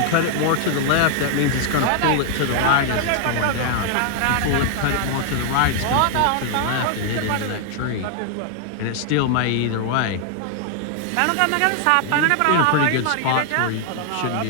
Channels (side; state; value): both; different; correlation 0.00